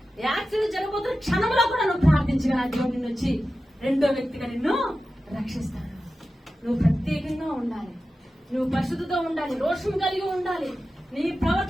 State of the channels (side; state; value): both; normal; correlation 0.93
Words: యాక్సిడెంట్ జరగబోతున్న క్షణంలో కూడా నువ్వు ప్రార్థించగా దేవుడు నిన్ను వచ్చి రెండో వ్యక్తిగా నిన్ను రక్షిస్తాడు. నువ్వు ప్రత్యేకంగా ఉండాలి, నువ్వు పరిశుద్ధతో ఉండాలి, రోషం కలిగి ఉండాలి, నీ